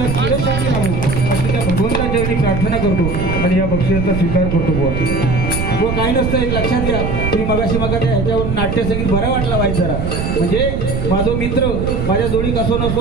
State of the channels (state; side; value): noise; right; rumble, 2 dB below the sound